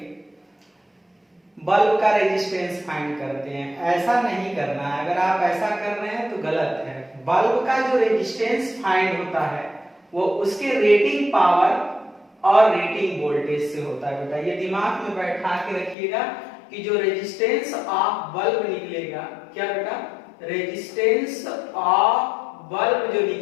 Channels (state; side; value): drops out; right; at 16.0 s